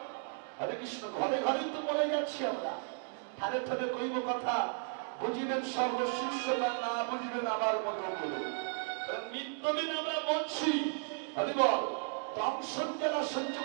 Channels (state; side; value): silent; left; 55 dB below the other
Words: হরে কৃষ্ণ। ঘরে ঘরে তো মরে যাচ্ছি আমরা। ঠারে ঠারে কইব কথা, বুঝিবেন সর্বশিষ্যগণ, না বুঝিবেন আমার মতো বলে। নিত্যদিন আমরা মরছি। হরিবল, দংশন যারা সহ্য